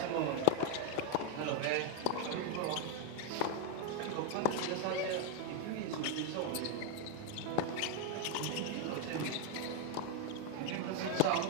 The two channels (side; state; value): both; different; correlation 0.00